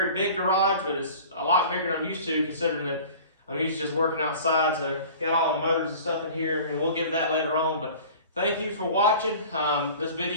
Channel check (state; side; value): inverted; both; correlation -0.43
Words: big garage, but it's a lot bigger than I'm used to, considering that I'm used to just working outside. So got all the motors and stuff in here, and we'll get that later on. But thank you for watching. This